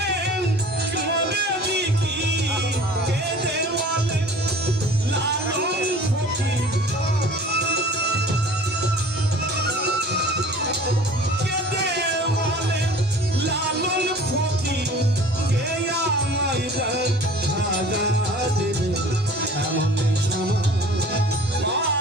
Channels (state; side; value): normal; both; correlation 0.45